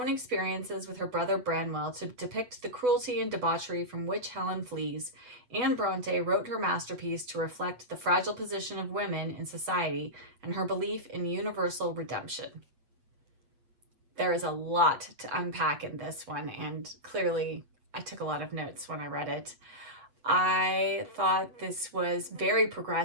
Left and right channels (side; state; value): left; late; 8.1 ms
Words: experiences with her brother Branwell to depict the cruelty and debauchery from which Helen flees, Anne Bronte wrote her masterpiece to reflect the fragile position of women in society and her belief in universal redemption. There is a lot to unpack in this one, and clearly I took a lot of notes when I read it. I thought this was very